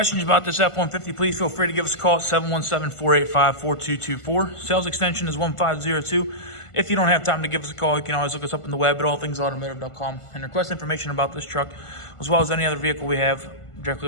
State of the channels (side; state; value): right; late; 1.5 ms